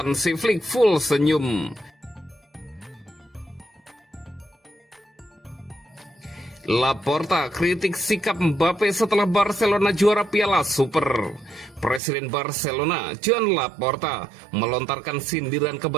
Flick full senyum. Laporta kritik sikap Mbappe setelah Barcelona juara Piala Super. Presiden Barcelona, Joan Laporta, melontarkan sindiran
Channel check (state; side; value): drops out; left; at 12.0 s